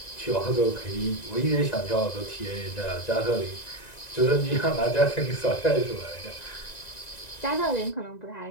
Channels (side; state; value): right; late; 1.9 ms